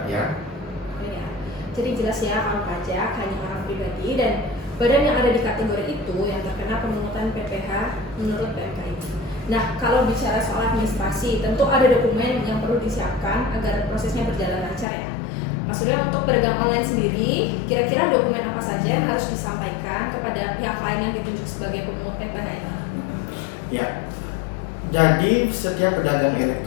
ya. Jadi jelas ya, kalau pajak hanya orang pribadi dan badan yang ada di kategori itu yang terkena pemungutan PPh menurut PMK ini. Nah, kalau bicara soal administrasi, tentu ada dokumen yang perlu disiapkan agar prosesnya berjalan lancar ya. Mas Surya, untuk pedagang online sendiri, kira-kira dokumen apa saja yang harus disampaikan kepada pihak lain yang ditunjuk sebagai pemungut PPh ini? Ya, jadi setiap pedagang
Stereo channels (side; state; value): right; drops out; at 14.9 s